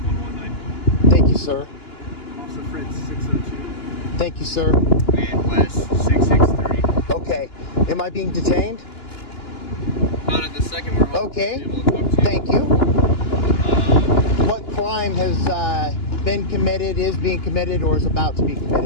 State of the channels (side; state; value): right; late; 2.9 ms